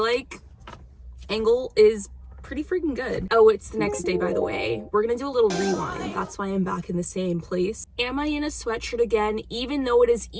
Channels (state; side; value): identical; both; correlation 1.00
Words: like angle is pretty freaking good. Oh, it's the next day, by the way. We're gonna do a little rewind. That's why I'm back in the same place. Am I in a sweatshirt again, even though it is